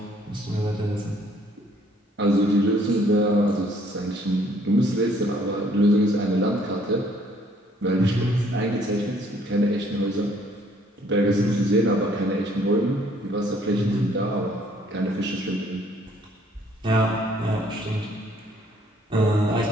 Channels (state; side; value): normal; both; correlation 0.62